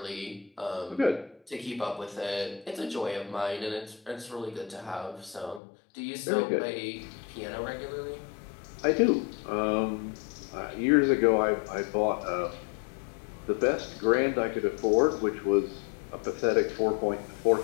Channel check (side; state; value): right; drops out; at 5.6 s